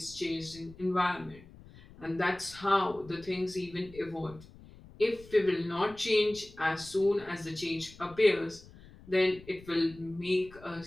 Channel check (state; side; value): noise; left; rumble, 21 dB below the sound